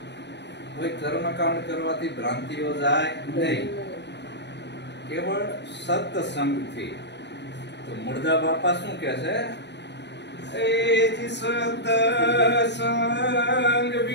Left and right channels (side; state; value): right; late; 0.50 ms